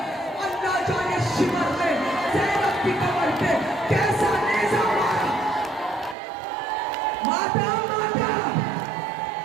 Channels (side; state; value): left; drops out; at 6.2 s